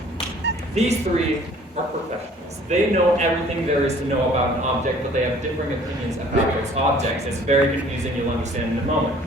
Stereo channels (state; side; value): normal; both; correlation 0.53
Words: these three are professionals. They know everything there is to know about an object, but they have differing opinions about those objects. It's very confusing, you'll understand in a moment.